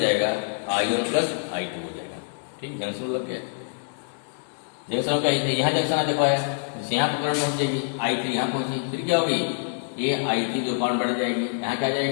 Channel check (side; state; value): right; silent; digital silence